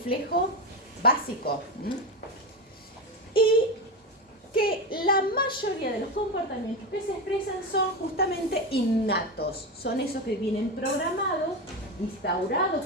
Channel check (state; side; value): normal; both; correlation 0.16